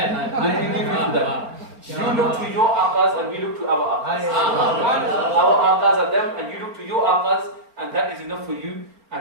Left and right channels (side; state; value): left; late; 4.4 ms